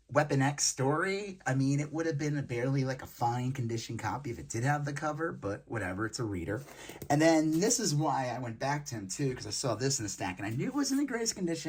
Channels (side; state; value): both; identical; correlation 1.00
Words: Weapon X story, I mean, it would have been barely like a fine condition copy if it did have the cover, but whatever, it's a reader. And then this is why I went back to him too, because I saw this in the stack, and I knew it was in the greatest